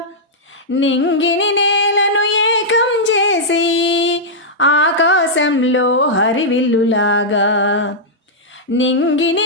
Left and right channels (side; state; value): both; normal; correlation -0.09